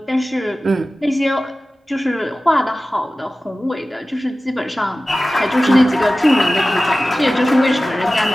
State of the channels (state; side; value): normal; both; correlation 0.96